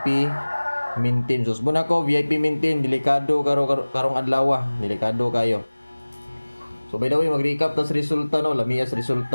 maintain. Sus mo na ko VIP maintain delikado karong adlaw, delikado kayo. So by the way, mag-recap tas resulta no, lamiyas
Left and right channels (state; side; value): inverted; both; correlation -1.00